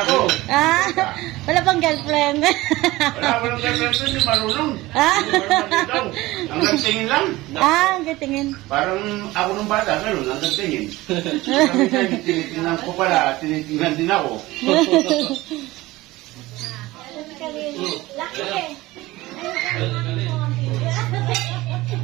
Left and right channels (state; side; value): quieter; left; 18.9 dB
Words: ko. Wala pang girlfriend. Walang girlfriend, hindi marunong. Hanggang tingin lang. Ang gatingin. Parang ako nung bata, gano'n, hanggang tingin. Tinitingnan ko pala, tinitingnan din ako. Lucky eh.